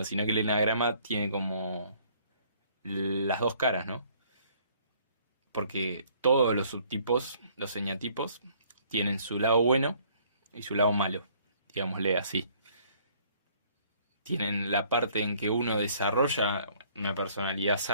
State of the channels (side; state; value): both; inverted; correlation -0.60